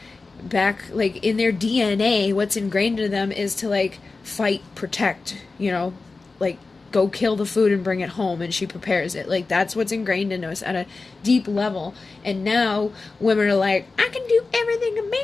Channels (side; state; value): right; quieter; 3.9 dB